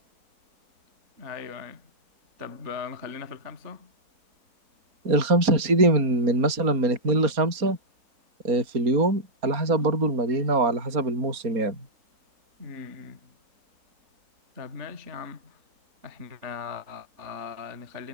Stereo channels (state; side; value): late; left; 4.3 ms